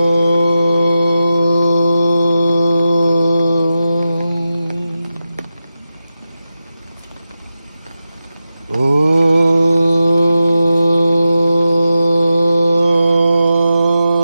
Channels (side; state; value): both; inverted; correlation -0.91